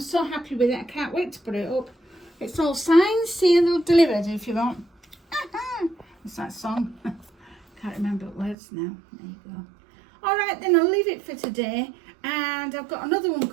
so happy with it. I can't wait to put it up. It's all signed, sealed, delivered if you want. It's that song. Can't remember words now. There you go. All right, then I'll leave it for today. And I've got another one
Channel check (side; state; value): left; drops out; at 8.6 s